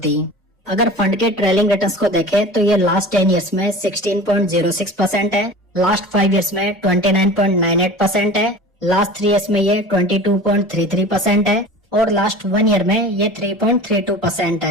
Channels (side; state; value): both; normal; correlation 0.37